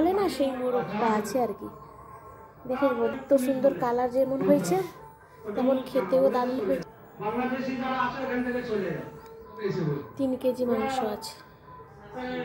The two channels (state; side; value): identical; both; correlation 1.00